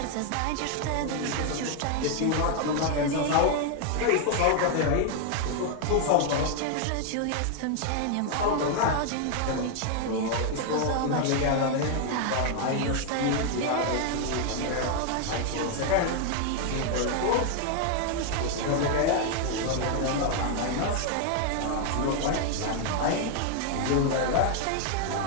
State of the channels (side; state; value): both; different; correlation 0.00